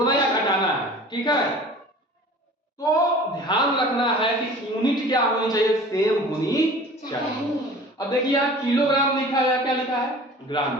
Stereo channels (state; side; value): normal; both; correlation 0.43